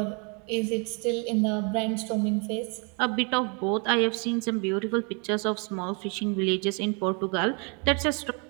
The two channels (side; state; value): left; quieter; 35.6 dB